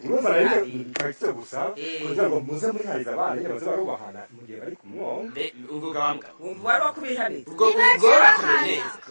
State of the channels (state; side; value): inverted; both; correlation -1.00